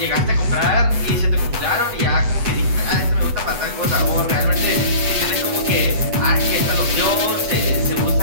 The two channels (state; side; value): late; left; 8.2 ms